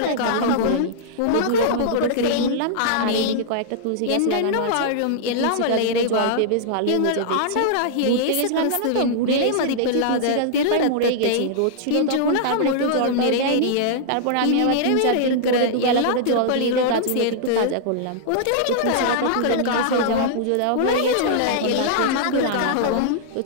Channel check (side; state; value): both; different; correlation -0.01